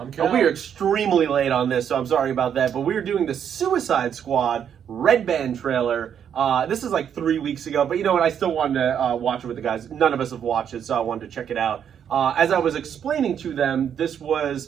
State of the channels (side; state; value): left; quieter; 8.5 dB